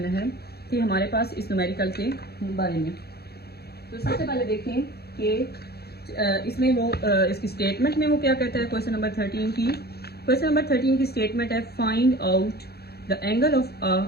है कि हमारे पास इस न्यूमेरिकल के बारे में। तो सबसे पहले देखें कि इसमें वो इसकी स्टेटमेंट में वो क्या कहता है, क्वेश्चन नंबर 13 की। क्वेश्चन नंबर 13 की स्टेटमेंट है, find out the angle of a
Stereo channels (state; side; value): late; right; 0.46 ms